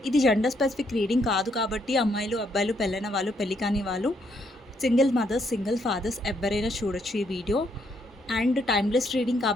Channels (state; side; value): normal; both; correlation 0.73